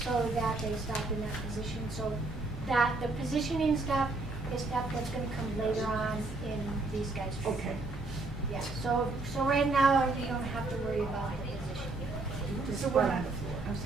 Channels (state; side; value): quieter; left; 3.3 dB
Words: so that they stop in that position. So that the positioning stuff is stuff that's going to come later on in these guys' training. Okay. Yeah. So right now you don't have to worry about the position. So we're on the